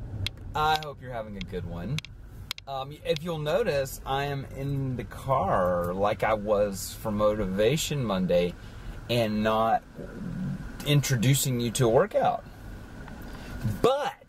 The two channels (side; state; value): both; identical; correlation 1.00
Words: I hope you're having a good one. If you'll notice, I am in the car like I was for Motivation Monday and not introducing you to a workout.